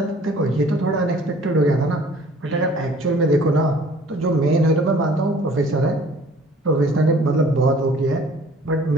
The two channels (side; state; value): both; normal; correlation 0.52